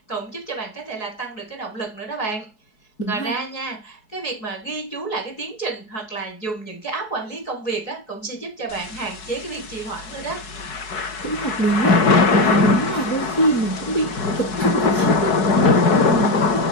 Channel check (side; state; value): right; late; 4.7 ms